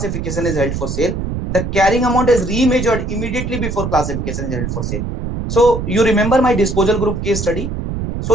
is held for sale. The carrying amount is remeasured immediately before classification is held for sale. So you remember my disposal group case study.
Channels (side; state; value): right; noise; rumble, 4 dB below the sound